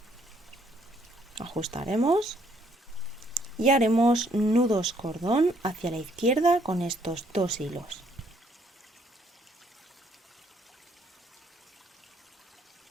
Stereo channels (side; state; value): both; normal; correlation 0.67